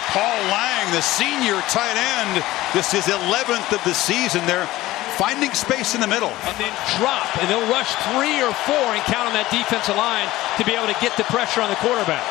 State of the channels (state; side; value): quieter; right; 17.0 dB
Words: Paul Lang, the senior tight end. This is 11th of the season. They're finding space in the middle. And then drop, and they'll rush 3 or 4 and count on that defensive line to be able to get the pressure on the quarterback.